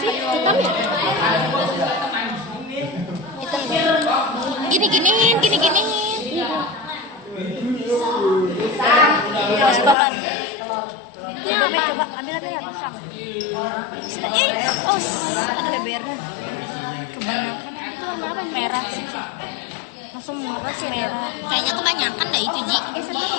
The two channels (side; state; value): right; drops out; at 10.0 s